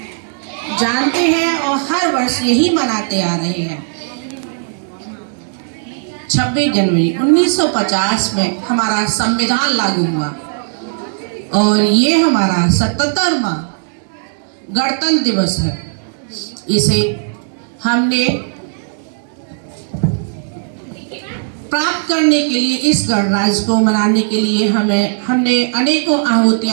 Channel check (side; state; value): left; silent; digital silence